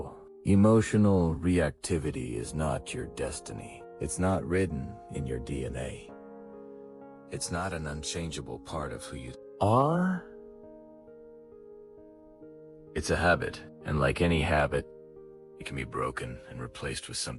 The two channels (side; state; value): both; identical; correlation 1.00